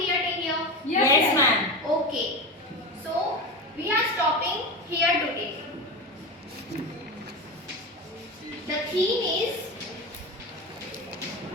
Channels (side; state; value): both; normal; correlation 0.22